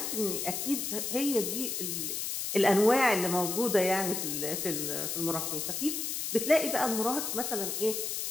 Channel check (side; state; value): left; noise; hiss, 2 dB below the sound